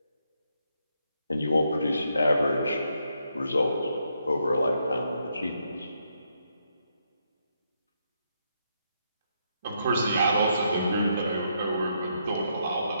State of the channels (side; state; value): both; inverted; correlation -0.78